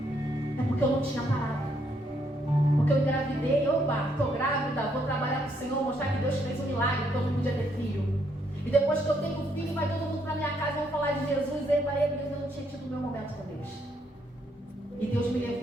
É porque eu não tinha parado. Porque eu engravidei, estou grávida, vou trabalhar com o Senhor, mostrar que Deus fez um milagre, que eu não podia ter filho. E depois que eu tenho filho, vai todo mundo para minha casa, vão falar de Jesus, eu não tinha tido o meu momento com Deus. E Deus me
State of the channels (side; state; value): both; normal; correlation 0.73